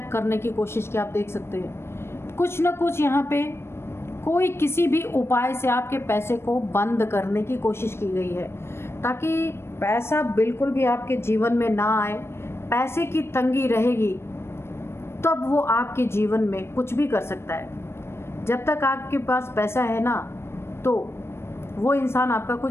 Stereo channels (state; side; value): late; right; 0.12 ms